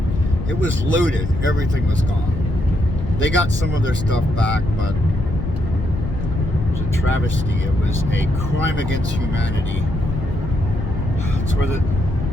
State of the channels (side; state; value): left; noise; rumble, 5 dB below the sound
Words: It was looted. Everything was gone. They got some of their stuff back, but it was a travesty. It was a crime against humanity. It's where the